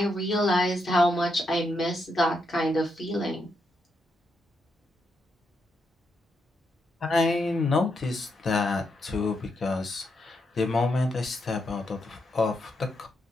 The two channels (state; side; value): normal; both; correlation 0.81